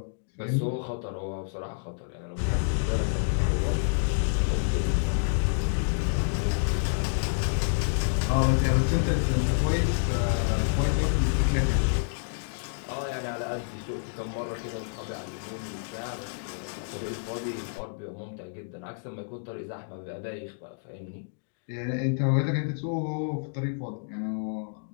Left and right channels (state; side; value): silent; right; digital silence